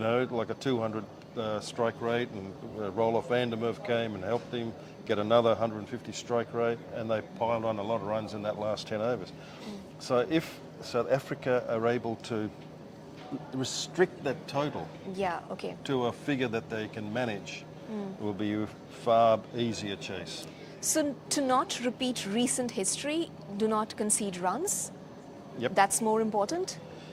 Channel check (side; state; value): both; identical; correlation 1.00